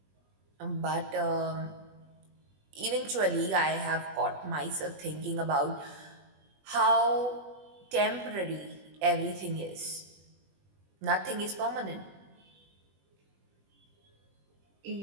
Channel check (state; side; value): late; left; 20 ms